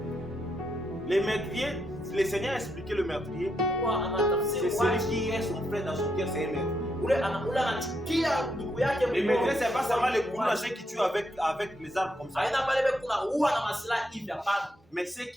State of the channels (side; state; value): both; normal; correlation 0.80